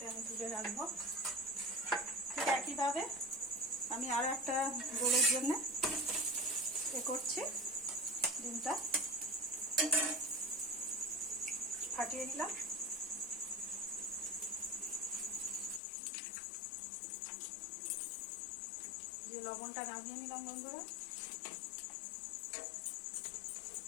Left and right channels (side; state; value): right; drops out; at 15.8 s